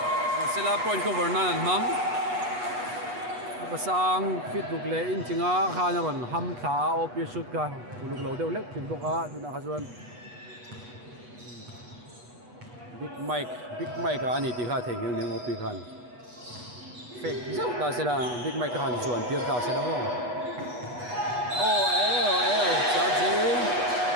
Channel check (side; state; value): left; late; 8.2 ms